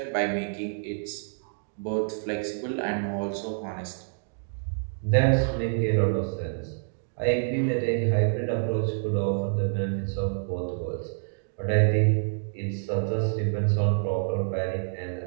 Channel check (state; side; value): silent; left; digital silence